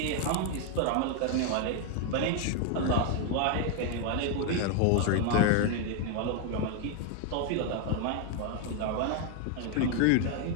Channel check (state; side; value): different; both; correlation 0.00